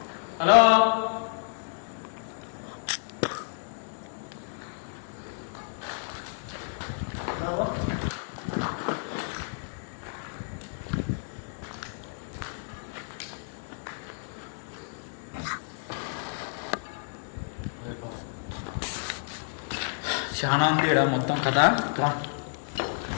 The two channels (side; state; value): right; silent; 58 dB below the other